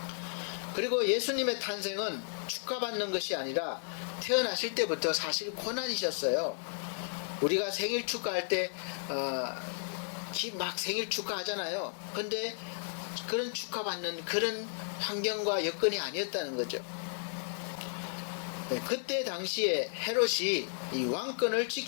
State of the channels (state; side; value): silent; right; digital silence